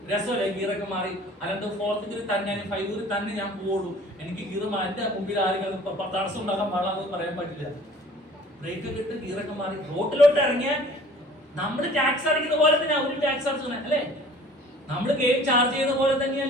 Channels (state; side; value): normal; both; correlation 0.49